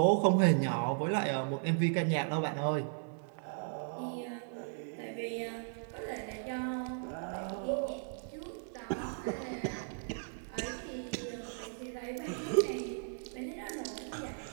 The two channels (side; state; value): left; silent; digital silence